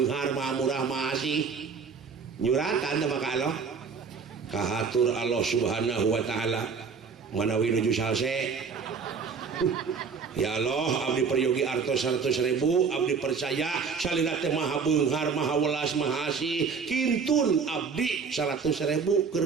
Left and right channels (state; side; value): quieter; left; 5.5 dB